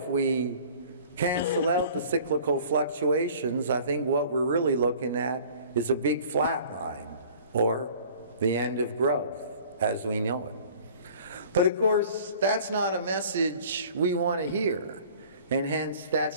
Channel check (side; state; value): both; inverted; correlation -0.48